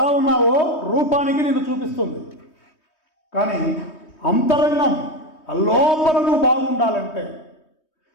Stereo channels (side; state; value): right; late; 3.2 ms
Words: ఉన్నావో రూపానికి నిన్ను చూపిస్తుంది. కానీ అంతరంగం లోపల నువ్వు బాగుండాలంటే,